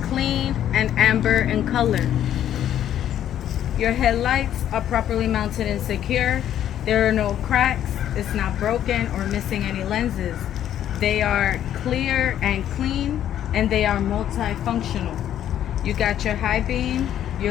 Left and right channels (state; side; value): quieter; right; 10.9 dB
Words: clean and amber in color. Your headlights are properly mounted and secure. There are no cracks. It's not broken or missing any lenses. They are clear and clean, and they are multifunctional. You got your high beam,